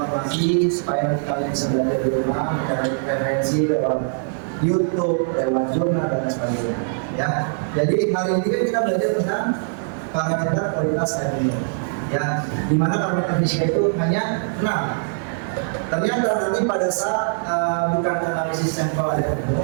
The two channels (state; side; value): silent; left; digital silence